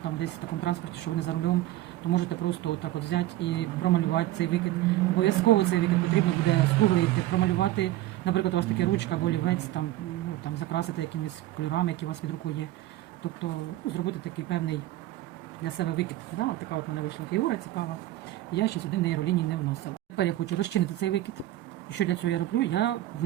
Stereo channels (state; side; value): quieter; left; 15.0 dB